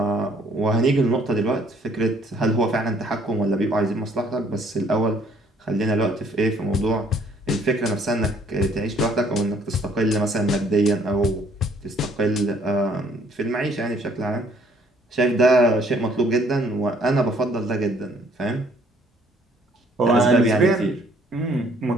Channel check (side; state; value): both; normal; correlation 0.62